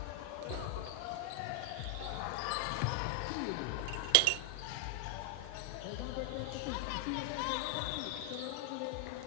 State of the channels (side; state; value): both; different; correlation 0.00